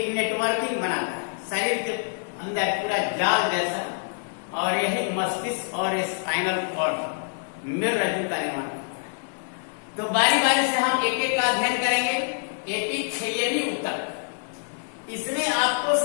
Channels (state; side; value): silent; right; digital silence